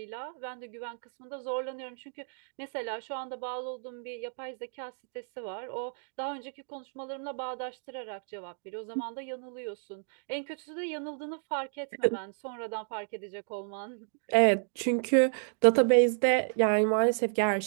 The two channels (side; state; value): left; silent; 57 dB below the other